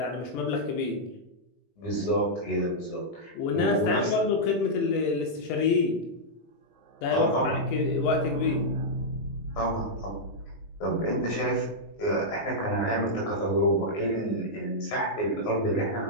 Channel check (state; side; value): late; right; 19 ms